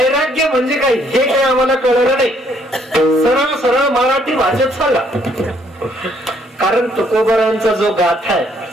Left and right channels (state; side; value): normal; both; correlation 0.67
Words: म्हणजे काय हे काही आम्हाला कळलं नाही. सरळ सरळ मराठी भाषेत सांगा. कारण तुकोबारायांचा जो गाथा आहे